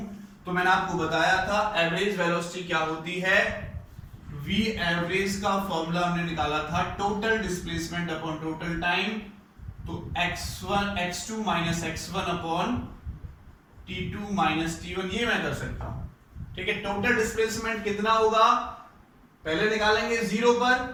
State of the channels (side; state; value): both; identical; correlation 1.00